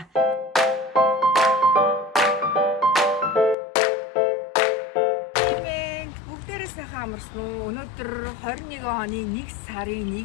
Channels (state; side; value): drops out; right; at 3.6 s